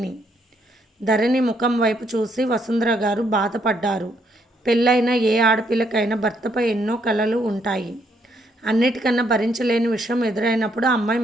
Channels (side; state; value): both; normal; correlation 0.72